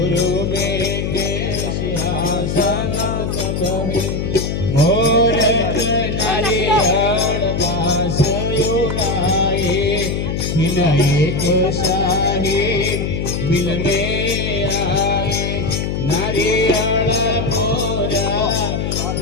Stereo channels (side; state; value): left; noise; hum, 1 dB below the sound